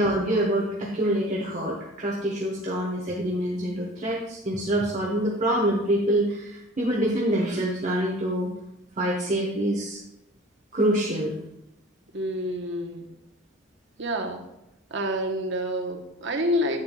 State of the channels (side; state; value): both; normal; correlation 0.42